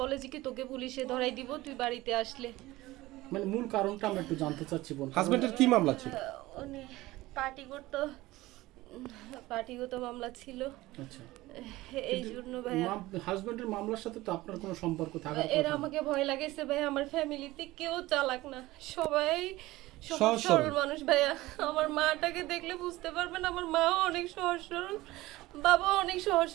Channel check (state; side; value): quieter; left; 18.4 dB